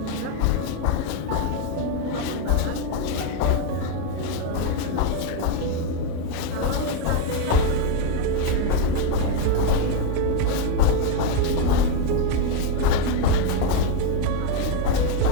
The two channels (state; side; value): different; both; correlation 0.01